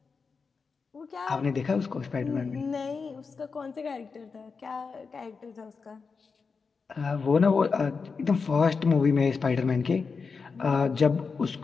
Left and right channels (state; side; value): quieter; right; 5.0 dB